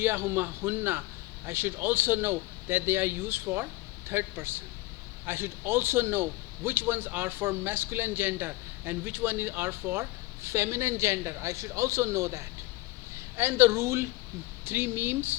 huma hunna, I should also know that they are used for third person. I should also know which ones are for masculine gender and which one are for feminine gender. I should also know that. And the rule, 3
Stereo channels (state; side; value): quieter; right; 20.2 dB